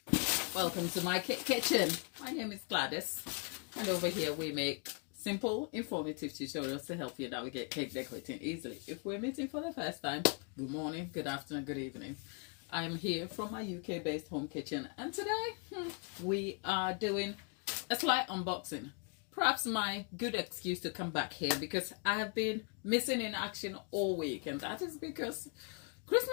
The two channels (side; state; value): right; quieter; 38.3 dB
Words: welcome to my kitchen. My name is Gladys, and over here we make simple, informative tutorials to help you navigate cake decorating easily. If we're meeting for the first time, good morning, good afternoon, good evening. I'm here from my UK-based home kitchen, and today we are doing a slight unboxing. Perhaps my good excuse to come back here because I have been missing in action all week, and that is because